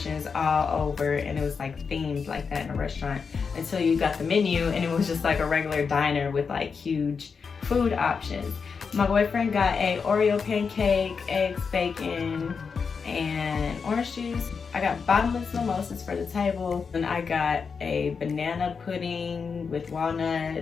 all over, and it was like themed like that in a restaurant until you got the menu, and it was just like a regular diner with like huge food options. My boyfriend got a Oreo pancake, eggs, bacon, and orange juice. I got bottomless mimosas for the table, and I got a banana pudding with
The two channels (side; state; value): right; quieter; 5.6 dB